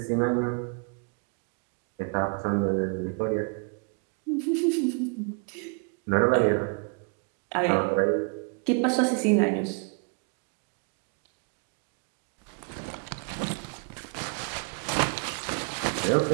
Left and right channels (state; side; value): quieter; left; 37.9 dB